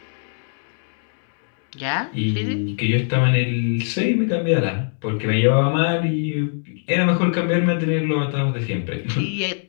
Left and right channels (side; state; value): right; silent; digital silence